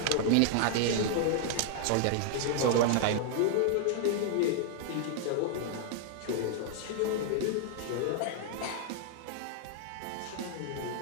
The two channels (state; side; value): different; both; correlation -0.01